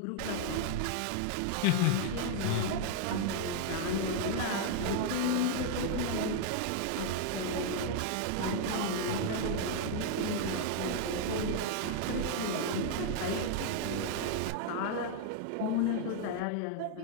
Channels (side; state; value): both; different; correlation 0.00